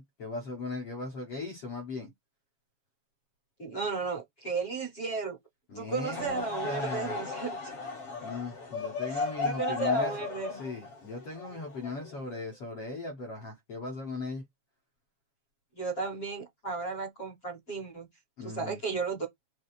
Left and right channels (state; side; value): late; right; 7.3 ms